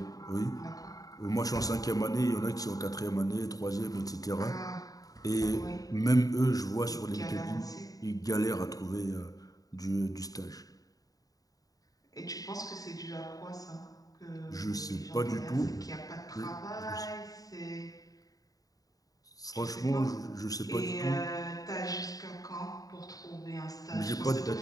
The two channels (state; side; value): late; right; 0.18 ms